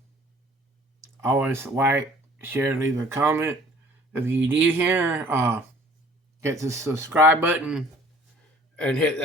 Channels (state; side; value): normal; both; correlation 0.53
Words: Always like, share, leave a comment. If you do here, hit the subscribe button, and hit